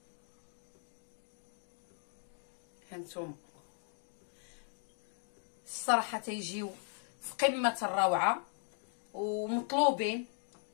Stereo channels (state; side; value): silent; right; 52 dB below the other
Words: هانتوما الصراحه تيجيو في قمه الروعه ومطلوبين.